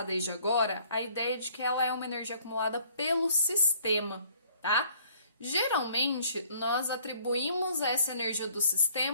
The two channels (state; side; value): inverted; both; correlation -0.59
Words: desde agora a ideia de que ela é uma energia acumulada pelo sistema, tá? Geralmente, nós atribuímos essa energia do